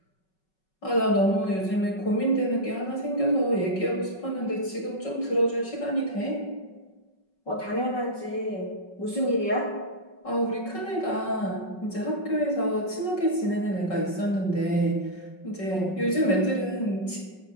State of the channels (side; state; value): right; late; 5.4 ms